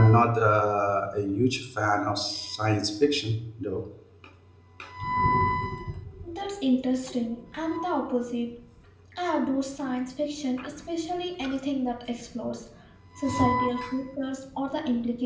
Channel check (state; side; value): identical; both; correlation 1.00